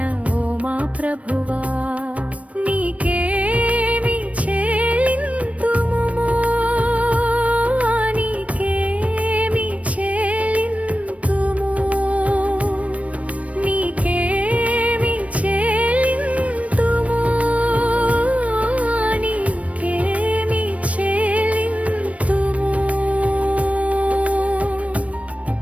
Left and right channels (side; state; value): left; late; 0.065 ms